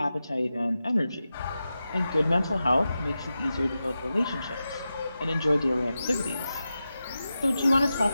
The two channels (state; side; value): inverted; both; correlation -0.92